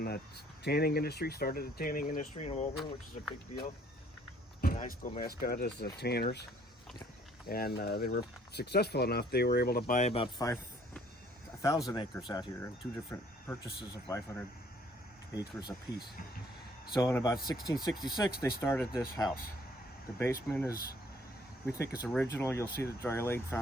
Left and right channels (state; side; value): normal; both; correlation 0.60